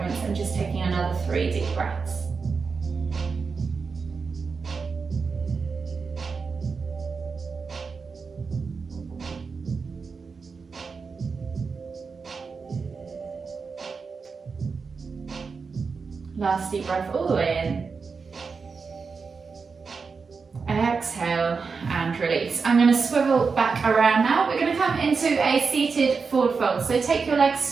and just taking another 3 deep breaths. Last deep breath all the way in. Exhale and release. I'm going to swivel back around now. We're going to come into a seated forward fold. So take your legs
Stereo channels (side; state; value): left; quieter; 5.0 dB